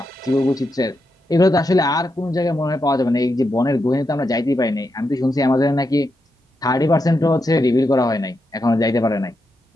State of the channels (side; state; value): both; normal; correlation 0.85